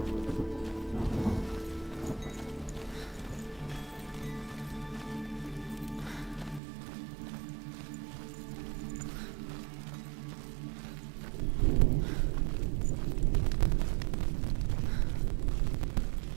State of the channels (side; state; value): left; drops out; at 6.6 s